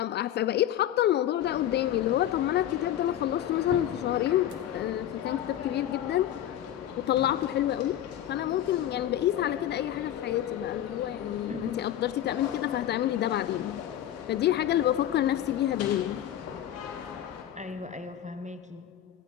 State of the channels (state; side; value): quieter; right; 11.6 dB